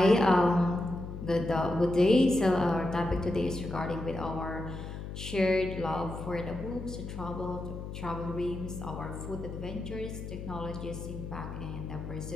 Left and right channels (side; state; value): left; noise; hum, 8 dB below the sound